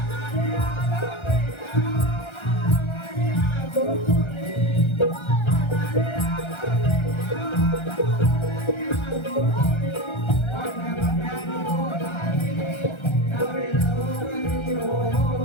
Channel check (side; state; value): right; late; 1.3 ms